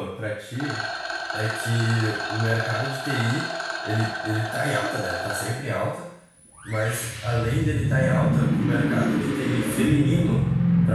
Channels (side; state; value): both; identical; correlation 1.00